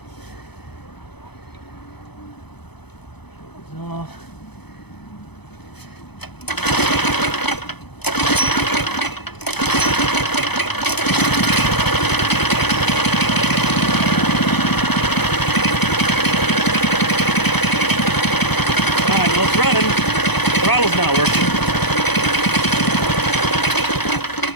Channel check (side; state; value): right; late; 0.98 ms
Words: It's off. Alright, well, it's running. Throttle's not working.